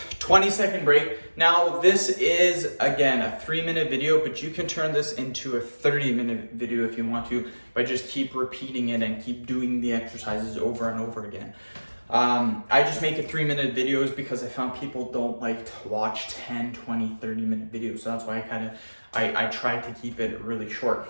Twenty-second break. Now this is, again, a 3-minute video, but you can turn this into a 30-minute video if you want to by just keep repeating it and keep doing the exercises over and over again. I just make it 3-minute videos because I found people don't like to watch 10, 20, 30-minute videos. So that's why I try to keep it really short.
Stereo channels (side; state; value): both; inverted; correlation -1.00